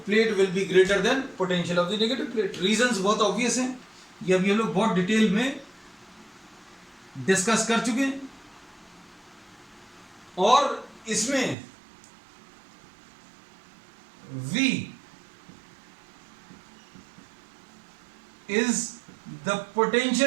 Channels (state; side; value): drops out; left; at 11.6 s